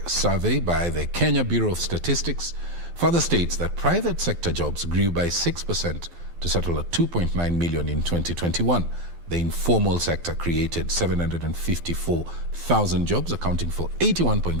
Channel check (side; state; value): left; late; 12 ms